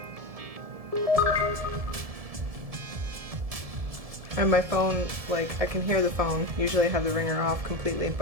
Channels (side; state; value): left; late; 1.7 ms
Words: And my phone, like, I can hear the phone. Usually I have the ringer off completely,